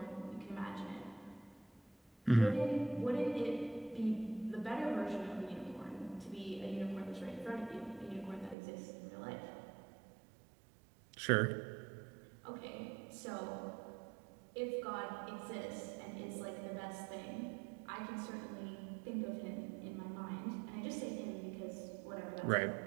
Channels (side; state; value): left; drops out; at 8.6 s